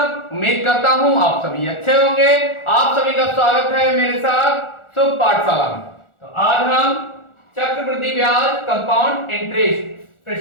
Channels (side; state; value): right; late; 1.4 ms